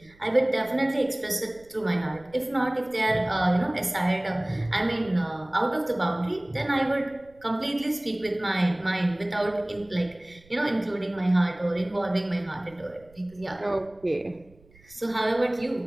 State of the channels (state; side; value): noise; right; rumble, 27 dB below the sound